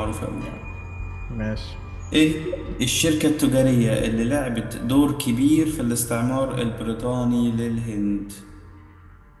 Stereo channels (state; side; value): identical; both; correlation 1.00